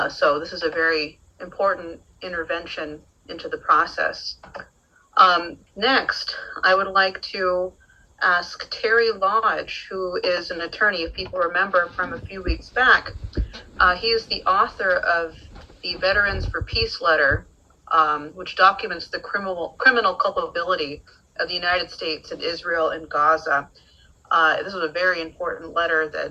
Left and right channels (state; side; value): identical; both; correlation 1.00